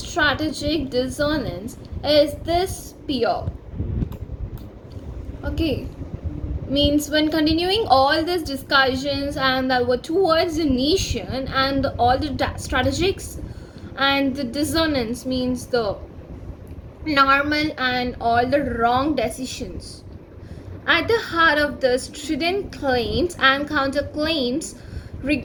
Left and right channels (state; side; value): identical; both; correlation 1.00